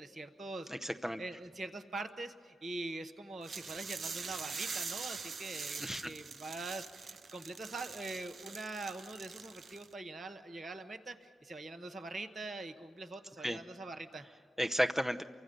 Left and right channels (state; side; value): normal; both; correlation 0.90